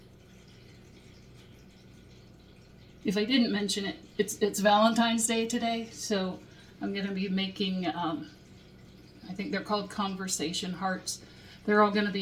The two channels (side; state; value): both; identical; correlation 1.00